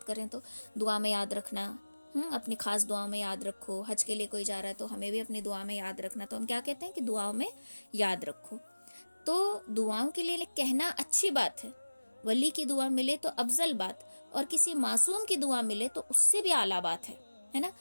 کریں تو دعا میں یاد رکھنا, اپنی خاص دعا میں یاد رکھو. حج کے لیے کوئی جا رہا ہے تو ہمیں بھی اپنی دعا میں یاد رکھنا. تو ہم کیا کہتے ہیں کہ دعاؤں میں یاد رکھو. تو دعاؤں کے لیے کہنا اچھی بات ہے, ولی کی دعا ملے تو افضل بات, اور کسی معصوم کی دعا ملے تو اس سے بھی اعلیٰ بات ہے نا.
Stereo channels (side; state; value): both; inverted; correlation -1.00